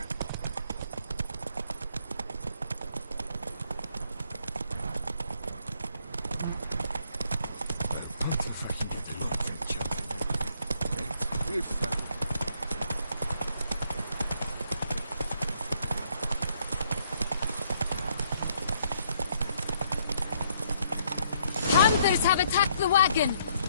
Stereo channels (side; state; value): both; inverted; correlation -0.69